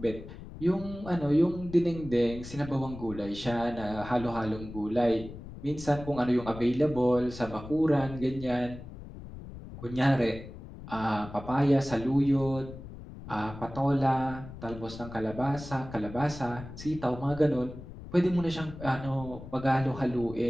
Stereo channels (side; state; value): left; noise; rumble, 13 dB below the sound